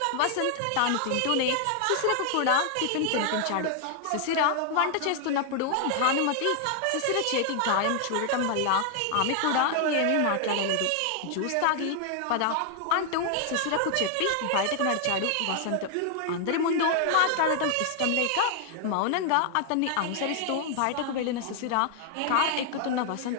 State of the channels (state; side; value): different; both; correlation 0.00